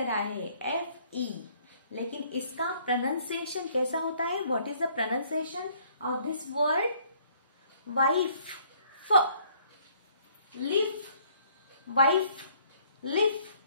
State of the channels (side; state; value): both; inverted; correlation -0.62